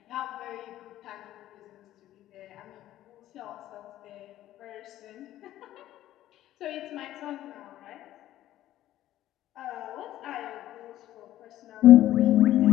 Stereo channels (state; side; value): quieter; right; 13.6 dB